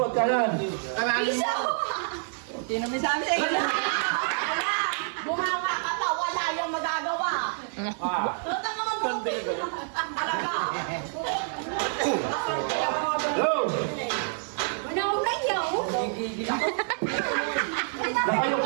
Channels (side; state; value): left; silent; digital silence